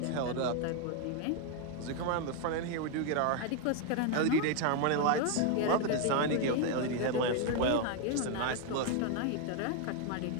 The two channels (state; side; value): different; both; correlation 0.01